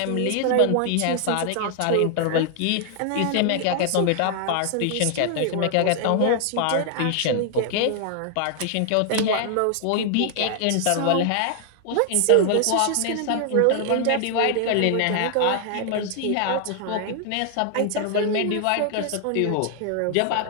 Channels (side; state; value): both; different; correlation 0.00